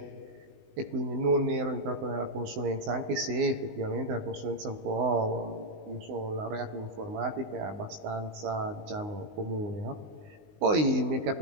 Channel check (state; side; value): late; left; 19 ms